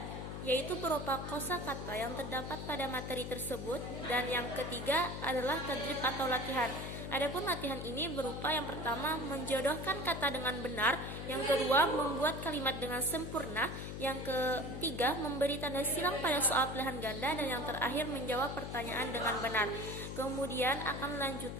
yaitu berupa kosakata yang terdapat pada materi tersebut, dan yang ketiga adalah tadrib atau latihan. Adapun latihan ini berupa yang pertama menjodohkan kata dengan benar, yang kedua membuat kalimat dengan sempurna, yang ketiga memberi tanda silang pada soal pilihan ganda, dan yang terakhir menjawab pertanyaan dengan benar. Kemudian akan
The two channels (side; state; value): left; noise; hum, 6 dB below the sound